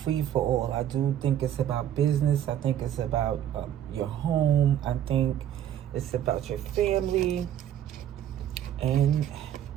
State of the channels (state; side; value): quieter; left; 10.9 dB